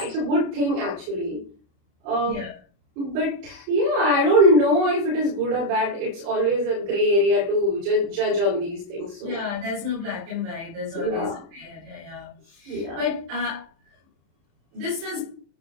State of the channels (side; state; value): left; late; 35 ms